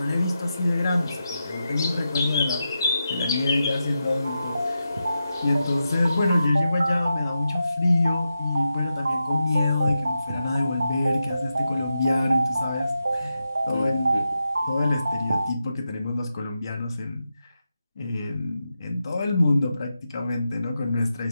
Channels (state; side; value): inverted; both; correlation -0.88